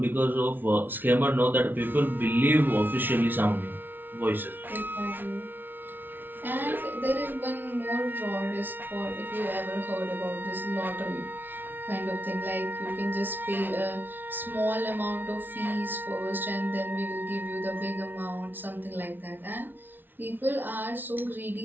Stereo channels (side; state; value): left; late; 0.093 ms